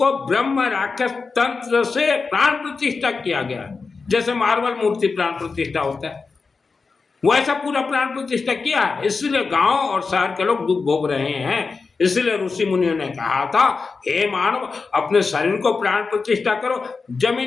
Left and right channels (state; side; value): quieter; right; 4.5 dB